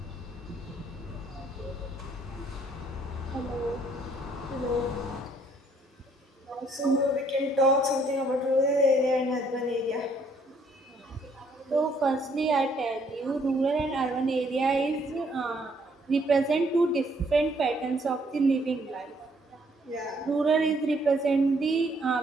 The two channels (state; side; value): normal; both; correlation 0.66